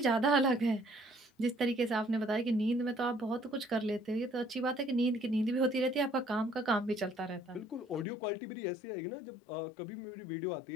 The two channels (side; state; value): right; drops out; at 8.1 s